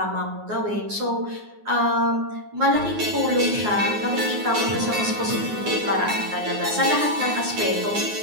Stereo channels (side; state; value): left; late; 9.6 ms